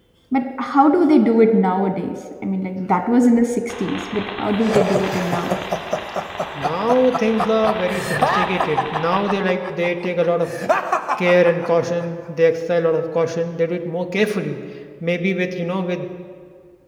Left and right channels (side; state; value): both; identical; correlation 1.00